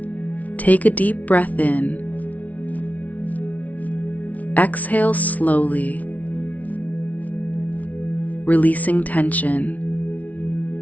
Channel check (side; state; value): right; late; 0.071 ms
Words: Take a deep breath in. Exhale slowly, releasing tension.